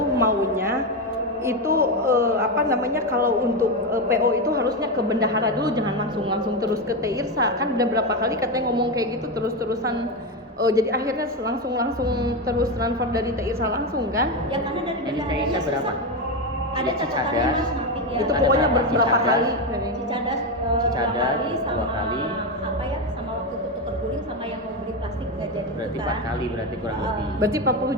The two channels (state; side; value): normal; both; correlation 0.12